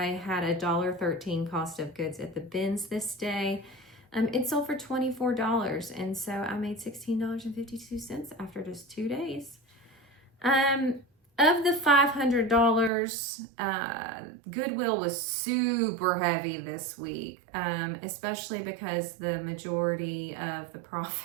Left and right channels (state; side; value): drops out; left; at 12.9 s